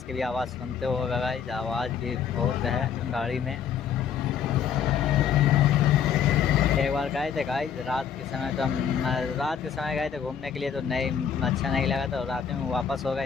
की भी आवाज़ सुनते होगा गाइस, आवाज़ भी बहुत है गाड़ी में। एक बार गए थे गाइस रात के समय, तो हम रात के समय गए थे घूमने के लिए, तो नहीं अच्छा नहीं लगा, तो रात में वापस हो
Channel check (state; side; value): quieter; right; 7.8 dB